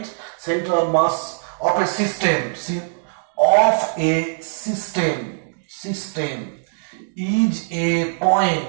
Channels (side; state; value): left; silent; digital silence